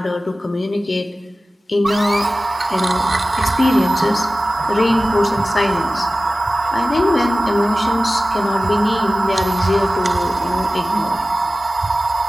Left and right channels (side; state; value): both; normal; correlation 0.96